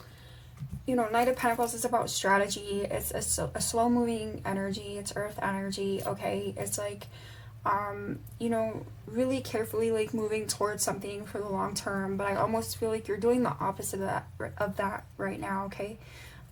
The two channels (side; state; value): both; identical; correlation 1.00